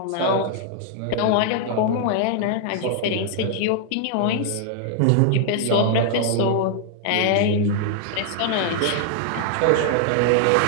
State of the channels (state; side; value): different; both; correlation 0.00